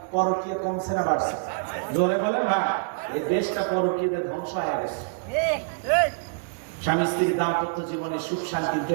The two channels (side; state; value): left; quieter; 37.6 dB